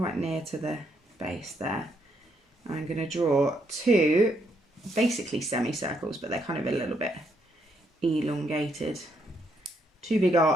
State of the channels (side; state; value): both; normal; correlation 0.75